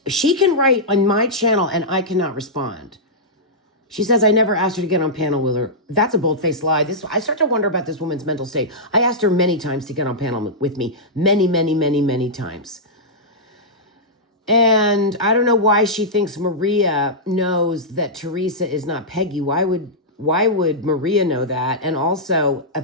She can write on my channel and I cannot respond. She says, I never asked her to get on panel with her. That's a bold-faced lie. I start to wonder about this woman's mental state. I asked her many times to get on panel with me. Many times. And I don't know why she thinks Maria knows that Teresa is not Peggy. Why would Maria know that? And also,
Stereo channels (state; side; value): normal; both; correlation -0.11